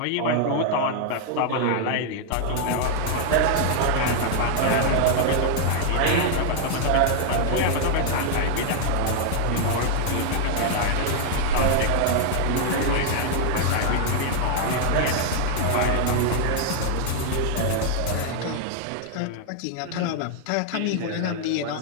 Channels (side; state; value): both; different; correlation 0.00